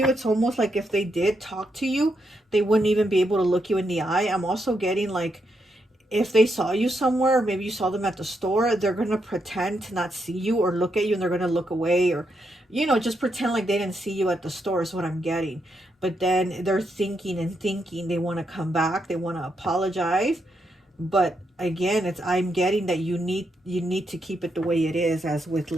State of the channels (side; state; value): both; normal; correlation 0.80